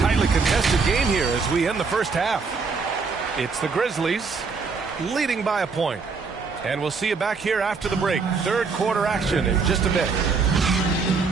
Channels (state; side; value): quieter; left; 4.9 dB